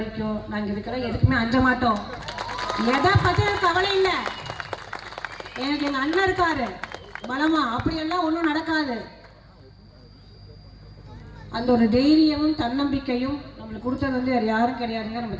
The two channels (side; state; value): both; identical; correlation 1.00